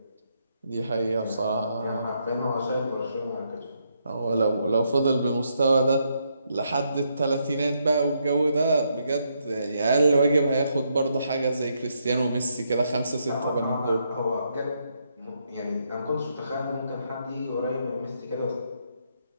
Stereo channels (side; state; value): both; inverted; correlation -0.78